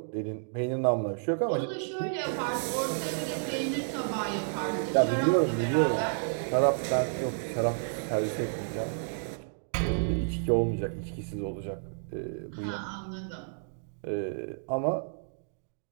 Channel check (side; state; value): left; silent; digital silence